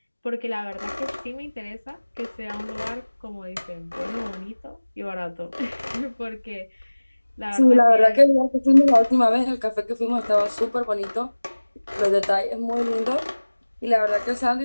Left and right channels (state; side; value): inverted; both; correlation -1.00